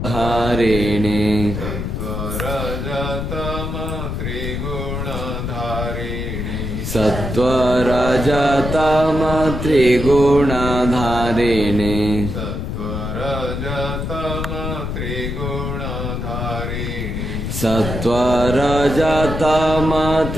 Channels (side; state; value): left; noise; rumble, 4 dB below the sound